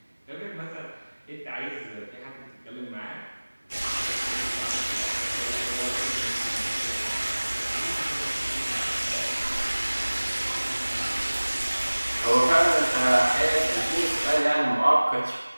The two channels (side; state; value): both; inverted; correlation -1.00